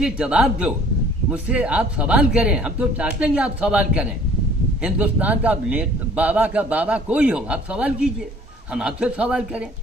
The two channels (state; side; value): normal; both; correlation 0.53